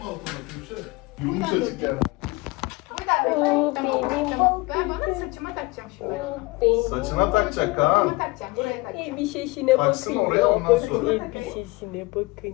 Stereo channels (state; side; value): quieter; right; 23.4 dB